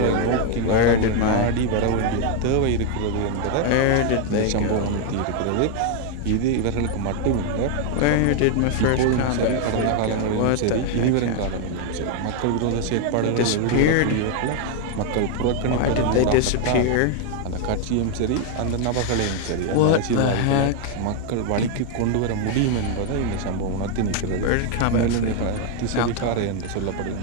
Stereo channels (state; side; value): different; both; correlation 0.01